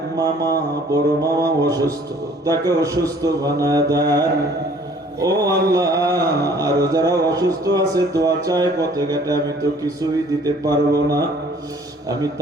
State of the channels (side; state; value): both; normal; correlation 0.55